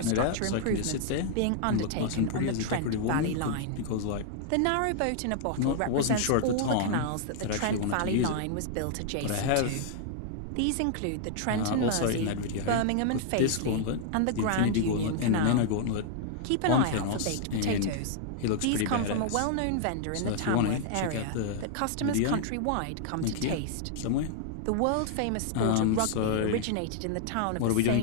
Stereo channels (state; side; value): different; both; correlation 0.00